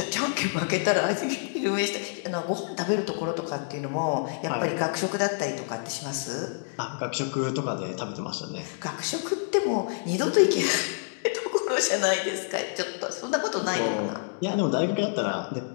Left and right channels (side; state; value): right; silent; digital silence